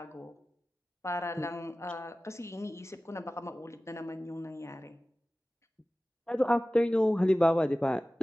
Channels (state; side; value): normal; both; correlation 0.97